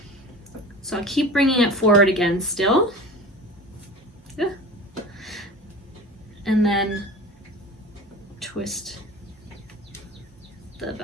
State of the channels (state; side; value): normal; both; correlation 0.36